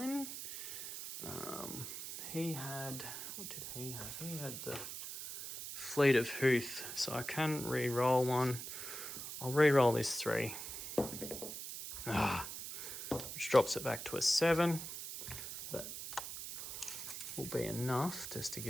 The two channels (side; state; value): right; noise; hiss, 7 dB below the sound